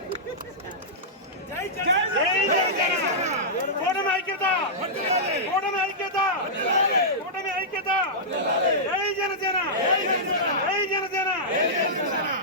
కూటమి ఐక్యత, కూటమి ఐక్యత, కూటమి ఐక్యత. జై జనసేన, జై జనసేన.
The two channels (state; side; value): normal; both; correlation -0.13